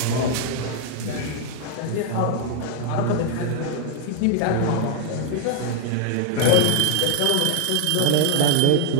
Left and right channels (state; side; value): different; both; correlation 0.00